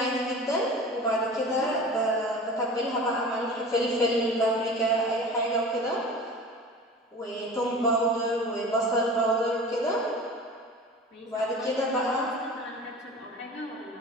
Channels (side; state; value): both; normal; correlation 0.38